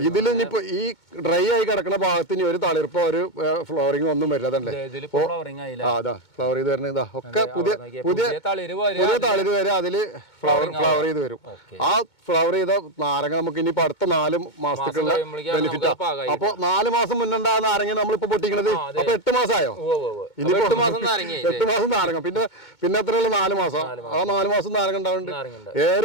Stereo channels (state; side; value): late; right; 2.2 ms